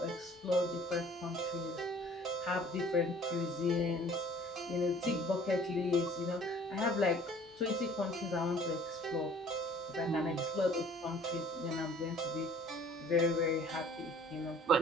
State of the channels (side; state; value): both; normal; correlation 0.52